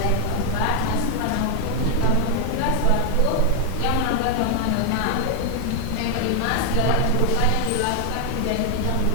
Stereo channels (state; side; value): different; both; correlation 0.00